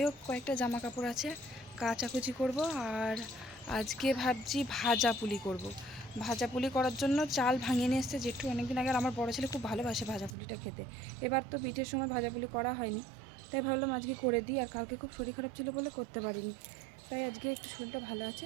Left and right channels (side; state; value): left; drops out; at 10.4 s